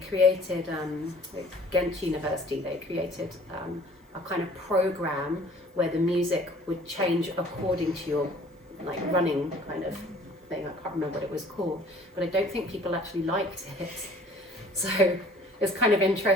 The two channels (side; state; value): both; normal; correlation 0.52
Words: created, at Ghent University, they created a kind of program where the music would change according to your like running kind of thing. I can't remember what it was called, but I don't think people actually liked it. So it's kind of